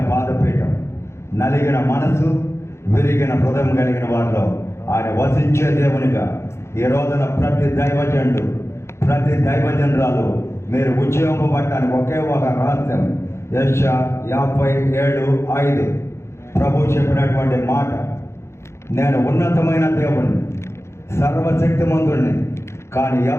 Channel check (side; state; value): right; late; 0.13 ms